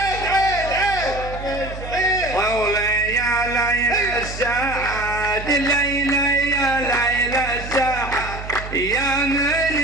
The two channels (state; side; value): noise; right; hum, 10 dB below the sound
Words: طولي يا ليل الساعد ليلى يا ليل الساعد يا